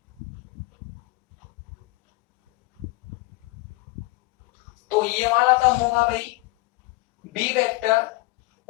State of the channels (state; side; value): quieter; right; 22.4 dB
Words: तो ये वाला तो होगा भाई बी वेक्टर